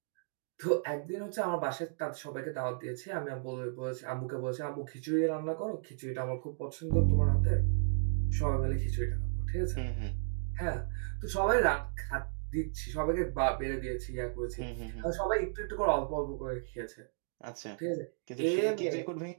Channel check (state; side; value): silent; left; digital silence